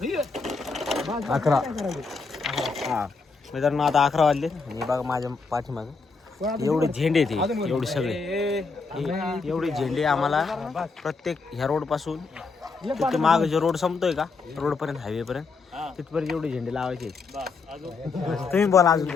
11. हां मित्रांनो आता 11 वाजले आणि बघा माझ्या पाठीमागं एवढे झेंडे ते एवढे सगळे एवढे झेंडे आम्हाला प्रत्येक ह्या रोडपासून तिथे माग जो रोड संपतोय का रोडपर्यंत हायवेपर्यंत तिथपर्यंत एवढे झेंडे लावायचे. तुम्ही बोला अजून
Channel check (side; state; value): right; quieter; 4.5 dB